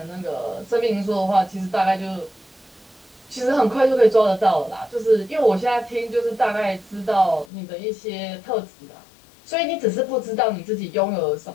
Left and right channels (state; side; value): drops out; right; at 7.5 s